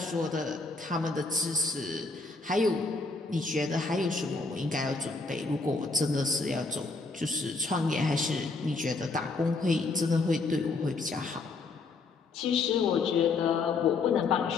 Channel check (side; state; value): right; quieter; 3.9 dB